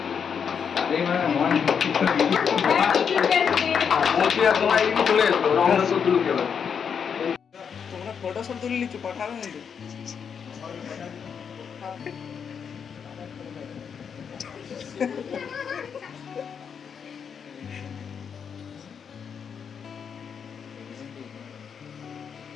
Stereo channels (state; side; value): quieter; right; 7.0 dB